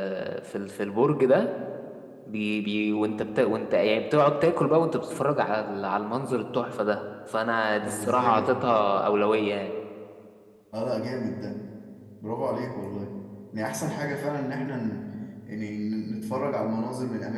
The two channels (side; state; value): both; identical; correlation 1.00